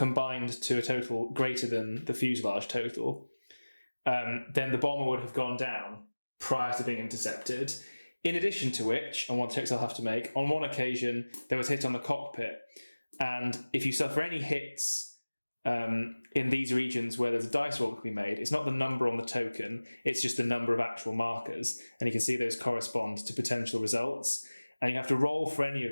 to a total greater than the fuselage total, then the bomber would have gone down prior to being intercepted. In addition to which, and one checks I'll have to make, on one occasion there was hit on the cockpit, and if you suffer any hits in these regions where there's a dice roll that can be made, it's not the number on the token, it's just the number of actual markers, and you can see those correspond to potential results. And you have to roll for any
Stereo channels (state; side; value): inverted; both; correlation -1.00